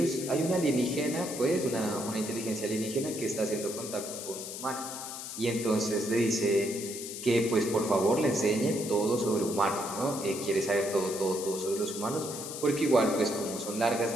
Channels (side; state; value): left; noise; hiss, 8 dB below the sound